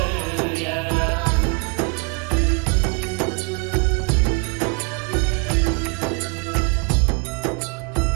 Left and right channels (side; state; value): left; quieter; 33.5 dB